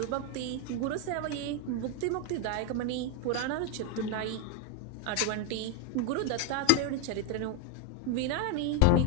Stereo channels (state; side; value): different; both; correlation 0.01